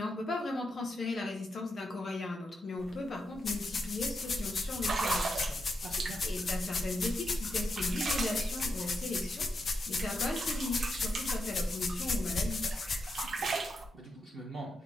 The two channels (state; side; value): normal; both; correlation 0.84